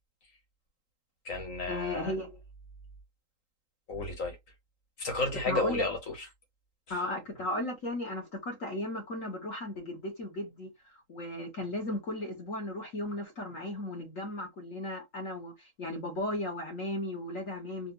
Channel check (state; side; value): late; right; 3.8 ms